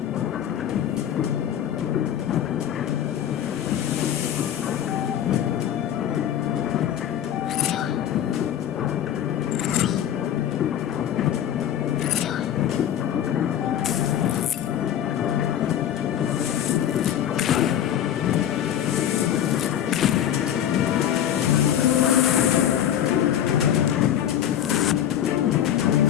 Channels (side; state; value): right; quieter; 10.4 dB